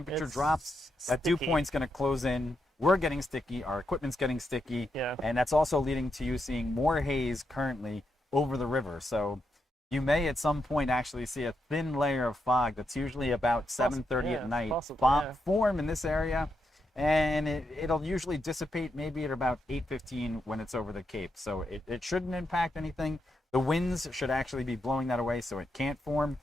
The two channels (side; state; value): both; normal; correlation 0.83